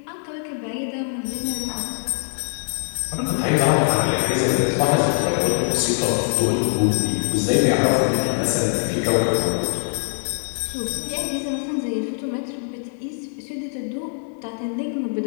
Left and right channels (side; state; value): right; silent; 64 dB below the other